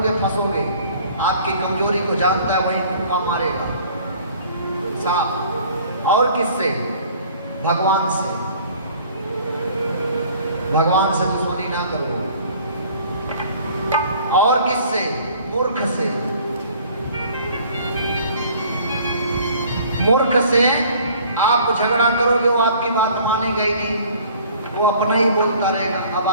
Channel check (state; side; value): inverted; both; correlation -0.52